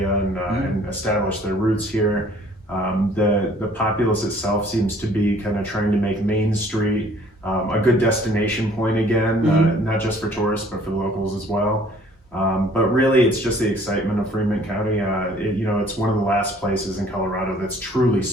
and establish their roots here. The populace itself seems to be kind of trying to make Main Street a good destination point again, not just for tourists, but for the locals as well. But really, it's just the excitement of Fremont County. It's one of the last places in Colorado that's truly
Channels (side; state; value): both; normal; correlation 0.56